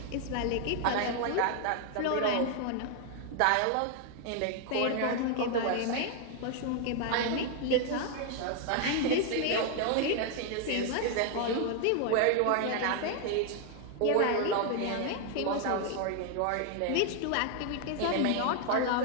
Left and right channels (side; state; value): both; different; correlation 0.00